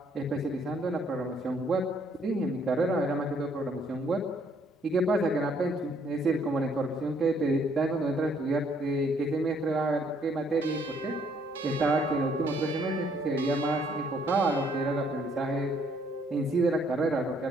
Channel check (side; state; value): both; normal; correlation 0.66